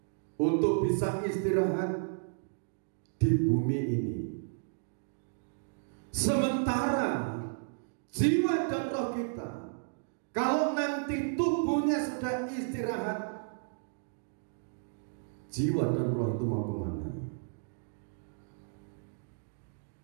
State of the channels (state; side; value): silent; left; digital silence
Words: untuk bisa istirahat di bumi ini. Sementara jiwa dan roh kita, kalau nanti tubuhnya sudah istirahat, jiwa dan roh itu mau kemana?